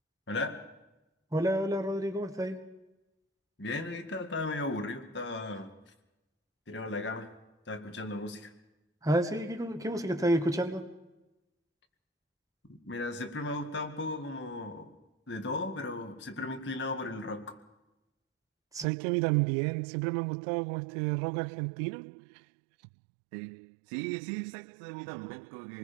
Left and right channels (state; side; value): drops out; left; at 18.9 s